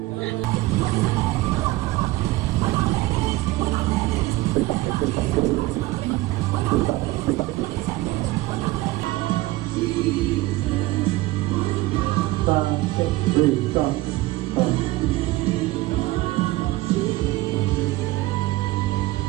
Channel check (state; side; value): quieter; left; 18.6 dB